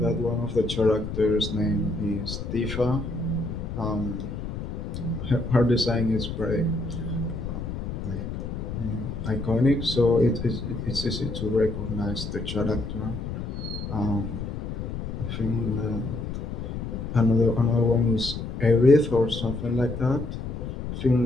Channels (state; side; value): noise; left; rumble, 6 dB below the sound